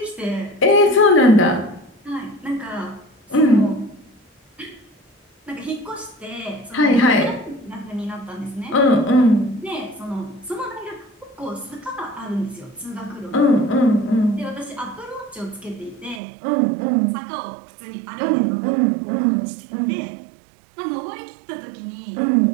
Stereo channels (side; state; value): left; drops out; at 16.2 s